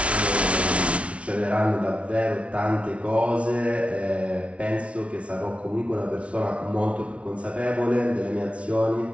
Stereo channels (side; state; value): left; late; 0.062 ms